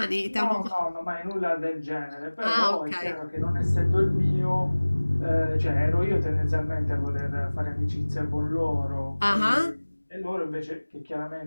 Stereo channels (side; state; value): both; inverted; correlation -1.00